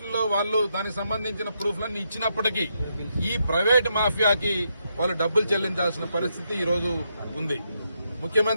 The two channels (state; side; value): inverted; both; correlation -0.80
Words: వాళ్ళు దానికి సంబంధించిన ప్రూఫ్లన్నీ ఇచ్చినప్పటికీ ఈ ప్రైవేట్ మాఫియాకి వాళ్ళు డబ్బులు చెల్లించాల్సిన పరిస్థితి ఈ రోజు ఉంది.